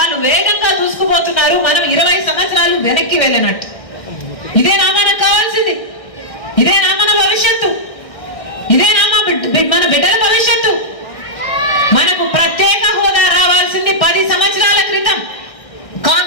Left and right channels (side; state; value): right; late; 1.6 ms